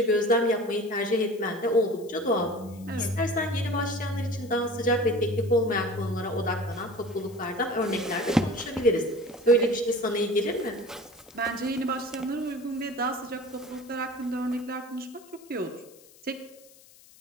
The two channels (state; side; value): noise; left; hiss, 25 dB below the sound